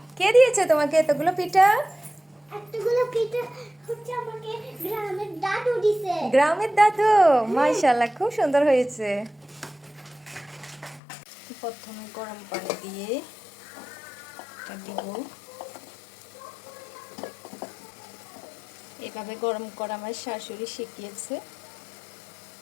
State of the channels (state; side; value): drops out; right; at 11.0 s